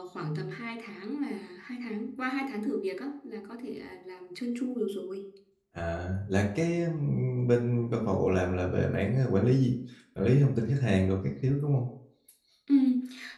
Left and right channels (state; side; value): identical; both; correlation 1.00